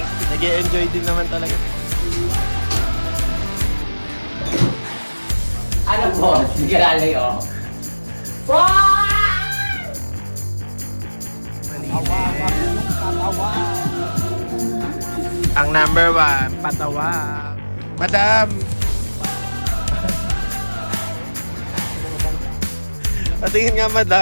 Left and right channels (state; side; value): inverted; both; correlation -1.00